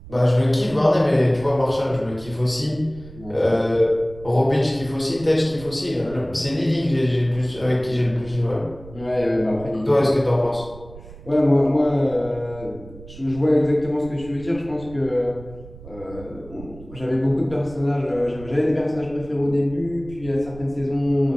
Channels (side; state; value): right; noise; rumble, 17 dB below the sound